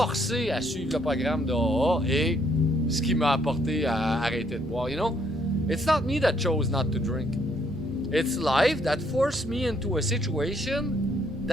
à suivre le programme de AA et ce qui m'a apporté à arrêter de boire. You know, it's not me that chose not to drink. It's life that forced me into a situation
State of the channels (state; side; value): normal; both; correlation 0.69